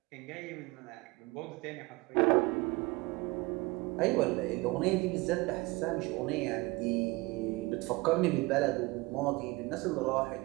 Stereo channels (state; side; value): quieter; left; 23.2 dB